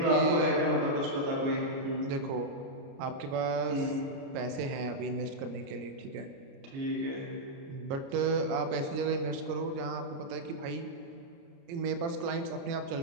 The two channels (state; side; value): late; left; 29 ms